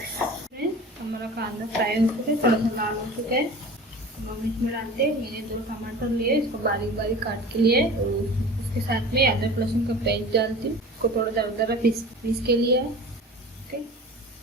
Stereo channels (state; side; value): normal; both; correlation 0.38